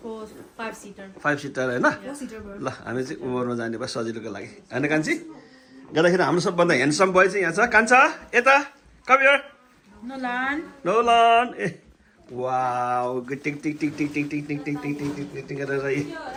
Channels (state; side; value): identical; both; correlation 1.00